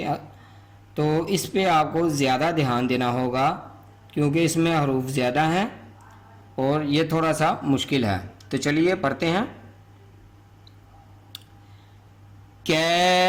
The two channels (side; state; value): both; identical; correlation 1.00